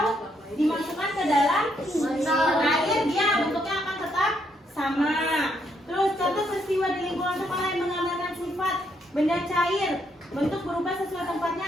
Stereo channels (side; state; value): both; normal; correlation 0.74